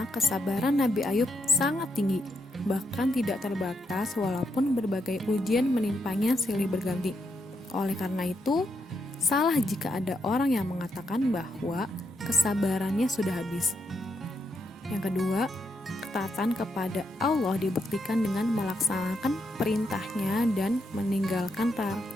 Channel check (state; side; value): normal; both; correlation 0.80